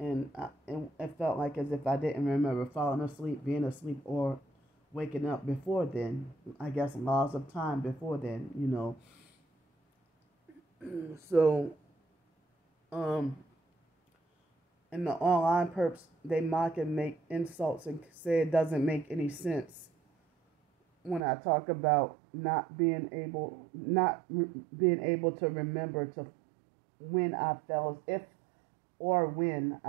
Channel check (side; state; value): left; drops out; at 21.2 s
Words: it felt like as if I didn't remember falling asleep, being asleep, or waking up before then. I guess laws of time before then, So, and the online perps, they mock and make insults and say it doesn't make any sense when I talk about not being able to remember to when I fell, if or when